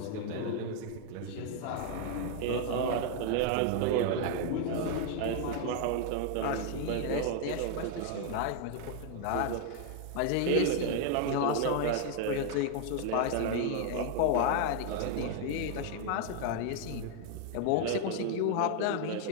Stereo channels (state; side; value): different; both; correlation 0.00